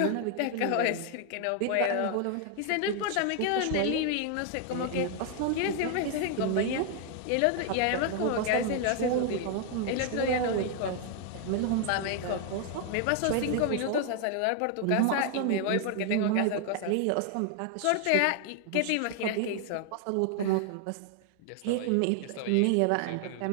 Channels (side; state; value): both; different; correlation 0.00